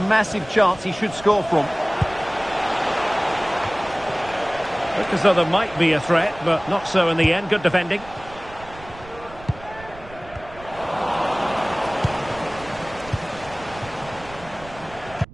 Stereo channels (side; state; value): right; noise; rumble, 19 dB below the sound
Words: massive chance he should score from. Looked as though there might be a threat, but not so in the end. Good defending.